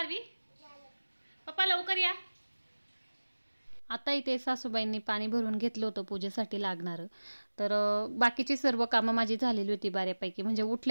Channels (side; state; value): both; inverted; correlation -1.00